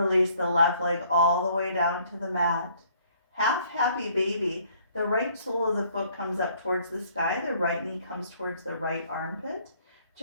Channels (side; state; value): both; inverted; correlation -0.62